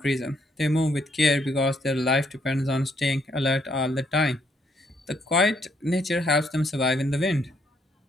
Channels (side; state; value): both; normal; correlation 0.71